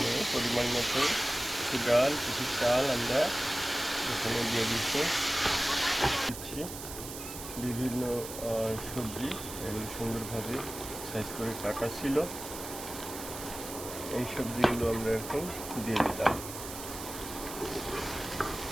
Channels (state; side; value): noise; right; hiss, 10 dB below the sound